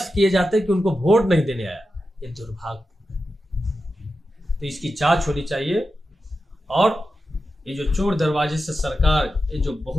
किए जाते कि उनको वोट नहीं देने आया। ये दुर्भाग्य। तो इसकी जांच होनी चाहिए। और ये जो चोर दरवाजे से सरकार, ये जो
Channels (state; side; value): normal; both; correlation 0.91